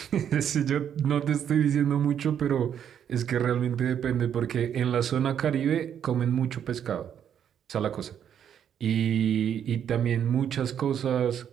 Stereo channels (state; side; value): quieter; left; 9.0 dB